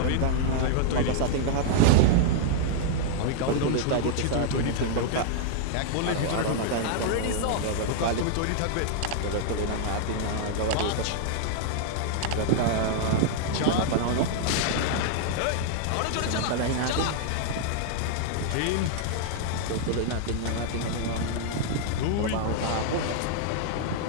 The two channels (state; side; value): different; both; correlation -0.01